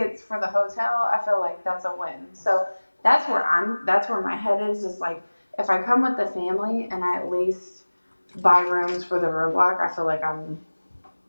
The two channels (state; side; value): inverted; both; correlation -1.00